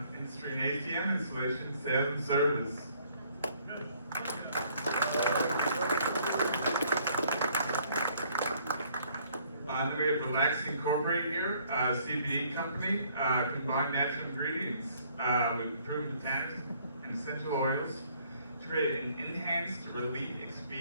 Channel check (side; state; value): both; inverted; correlation -0.63